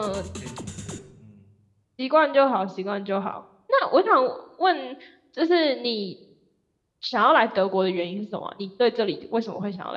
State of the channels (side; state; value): both; identical; correlation 1.00